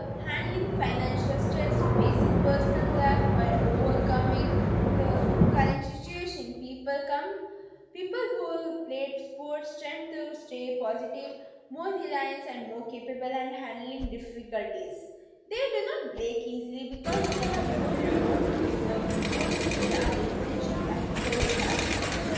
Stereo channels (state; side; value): identical; both; correlation 1.00